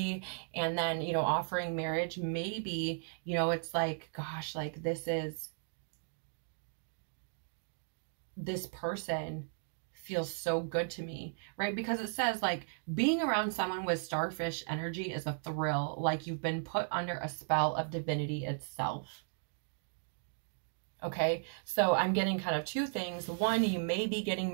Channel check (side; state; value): left; silent; digital silence